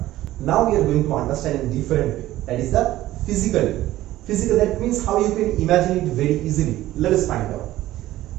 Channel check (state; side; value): quieter; left; 15.2 dB